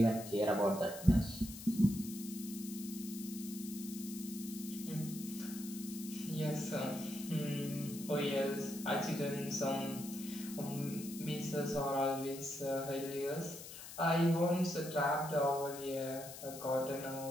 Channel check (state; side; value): noise; left; hiss, 12 dB below the sound